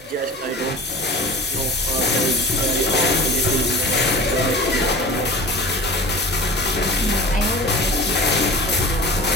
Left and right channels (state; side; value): normal; both; correlation 0.37